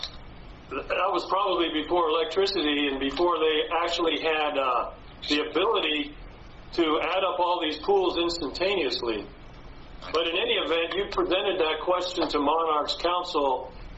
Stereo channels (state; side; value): identical; both; correlation 1.00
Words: that was probably before electricity and before they actually had the ability to add up all these pools instantaneously. But in any event, you presented that question to Monarch's counsel,